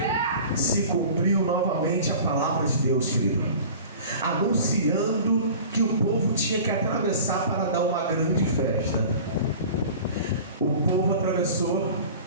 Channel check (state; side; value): inverted; both; correlation -0.40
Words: Se cumpriu novamente a palavra de Deus, querido, anunciando que o povo tinha que atravessar para dar uma grande festa. O povo atravessou,